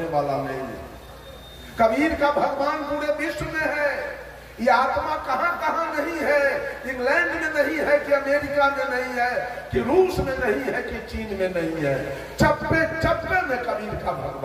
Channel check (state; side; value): identical; both; correlation 1.00